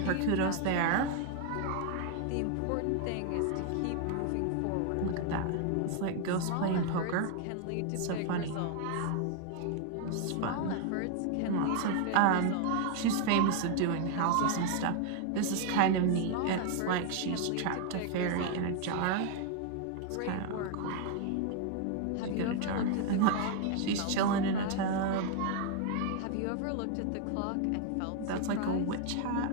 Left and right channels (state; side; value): different; both; correlation 0.00